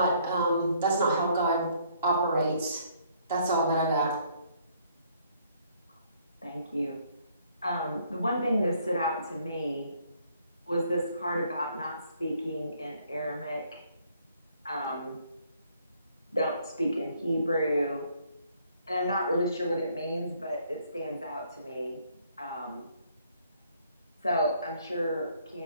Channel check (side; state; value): both; inverted; correlation -0.65